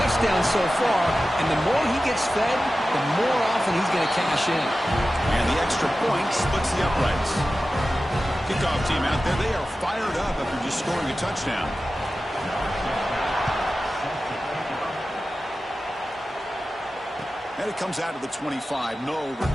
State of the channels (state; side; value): normal; both; correlation 0.94